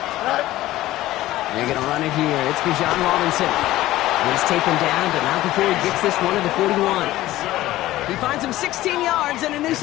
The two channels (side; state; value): right; quieter; 15.9 dB